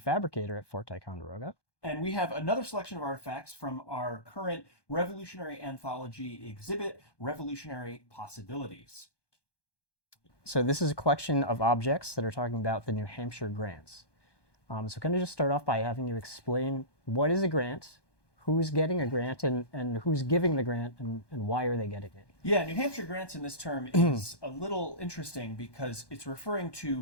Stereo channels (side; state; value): right; late; 1.2 ms